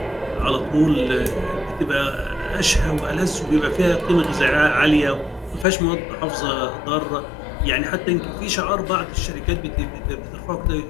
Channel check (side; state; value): right; drops out; at 5.7 s